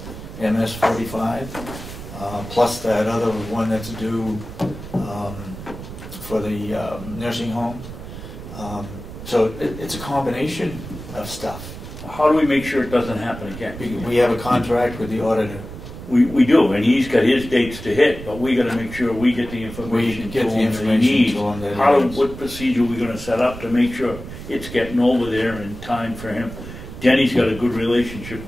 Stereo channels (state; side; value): noise; right; rumble, 12 dB below the sound